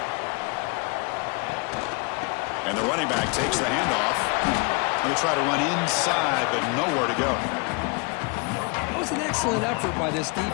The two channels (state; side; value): quieter; right; 31.9 dB